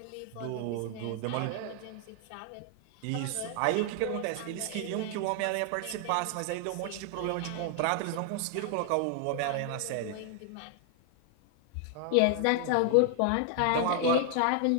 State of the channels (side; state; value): both; different; correlation 0.00